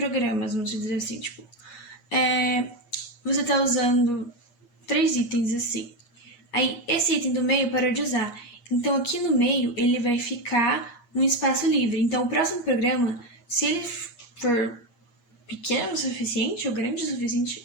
vamos dizer assim, tipo, você tá usando 3 itens assim. Aí, esse item do meio parou de usar. Então, aqui no meio, ele vai ficar um espaço livre. Então, o próximo programa, se ele for pequeno o suficiente ou grande o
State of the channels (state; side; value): late; right; 8.5 ms